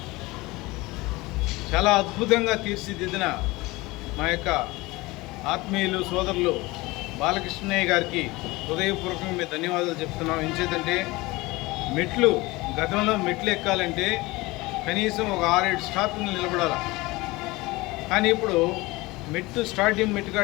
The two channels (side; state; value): right; quieter; 21.7 dB